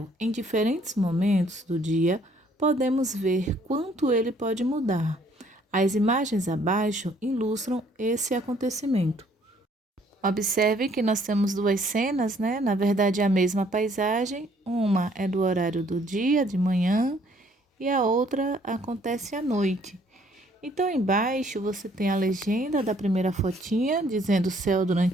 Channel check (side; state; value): both; normal; correlation 0.63